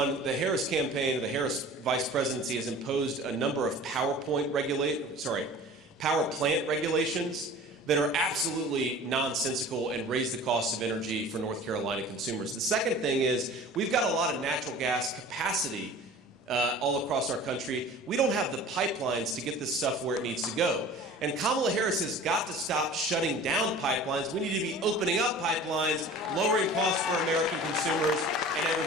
the Harris campaign, or the Harris vice presidency, has imposed a number of power plant regulations that are absolutely nonsensical and raise the cost of energy for North Carolina consumers. The second thing is we've got a lot of natural gas capacity all across our country. We don't have the pipelines to get this stuff where it needs to go. And Kamala Harris has got to stop shutting down pipelines. We need to be opening up pipelines, lowering costs for American consumers and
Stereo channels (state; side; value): normal; both; correlation 0.42